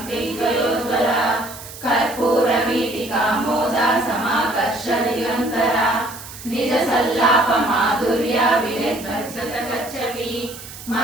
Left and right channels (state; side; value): noise; right; hiss, 14 dB below the sound